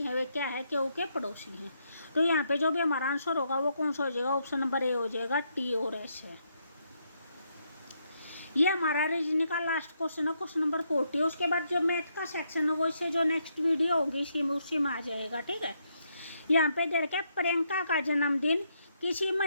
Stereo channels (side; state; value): both; inverted; correlation -0.77